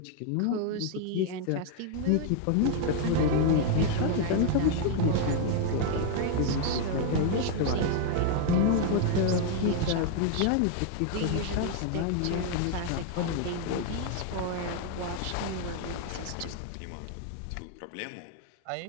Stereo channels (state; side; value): different; both; correlation 0.00